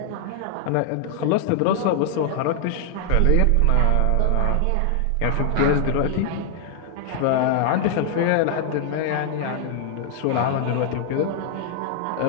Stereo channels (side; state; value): both; different; correlation 0.00